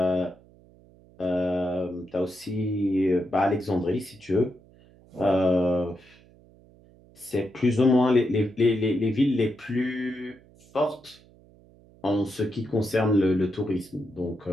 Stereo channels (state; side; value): noise; right; hum, 27 dB below the sound